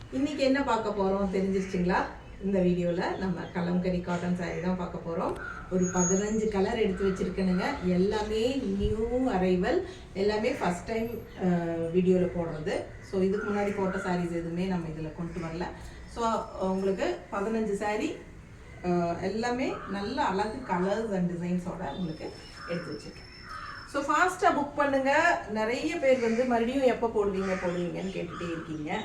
இன்னைக்கு என்ன பார்க்க போறோம் தெரிஞ்சிருச்சுங்களா? இந்த வீடியோல நம்ம கலம்கரி காட்டன் saree தான் பார்க்க போறோம். ஒரு 15 கலர் எடுத்து வச்சிருக்கேனுங்க. எல்லாமே நியூ அரைவல், எல்லாமே ஃபர்ஸ்ட் டைம் வீடியோல போடுறது. ஸோ இதுக்கு முன்னாடி போட்ட sarees எதுவுமே நம்ம இதில் கொண்டு வரல. ஸோ உங்களுக்கு 15 saree எல்லாமே நல்ல அழகு கலர்ஸ் அண்ட் டிசைன்ஸோட உங்களுக்கு எடுத்து வச்சிருக்கேன். ஸோ ஃபாஸ்ட்டாக புக் பண்ணுங்கள். நிறைய பேர் வந்து மறுபடியும் எப்போ போடுவீங்கன்னு கேட்டுகிட்டே இருக்கீங்க.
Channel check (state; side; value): identical; both; correlation 1.00